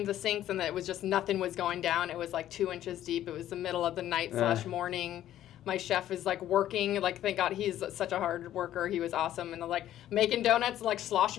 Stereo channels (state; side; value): quieter; right; 12.4 dB